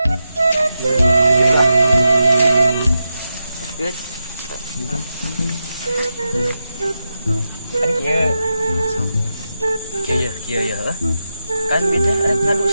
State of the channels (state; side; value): inverted; both; correlation -0.89